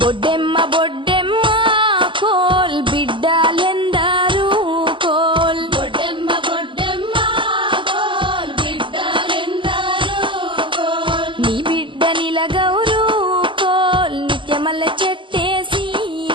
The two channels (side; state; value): left; late; 0.24 ms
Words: Boddemma Boddemma coal బిడ్డలెందరూ coal Boddemma Boddemma coal బిడ్డలెందరూ coal నీ బిడ్డ నిలగౌరు కోల్ నిత్యమల్ల చెట్టేసి